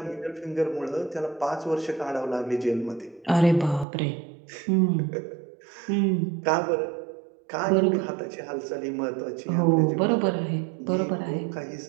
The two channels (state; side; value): drops out; left; at 3.9 s